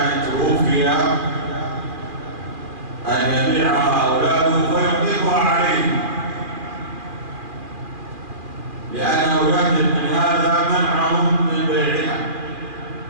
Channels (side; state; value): left; late; 2.4 ms